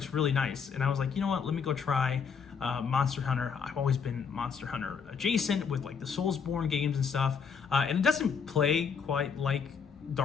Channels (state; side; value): quieter; right; 6.2 dB